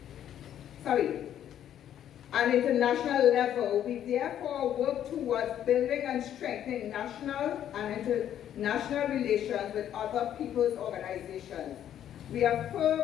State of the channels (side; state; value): right; quieter; 10.5 dB